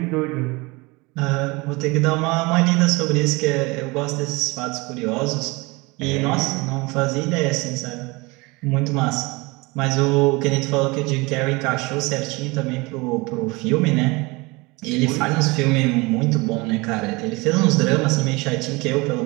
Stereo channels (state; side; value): quieter; left; 24.9 dB